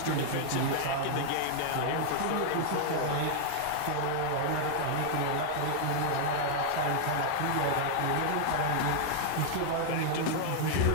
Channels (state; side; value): different; both; correlation -0.01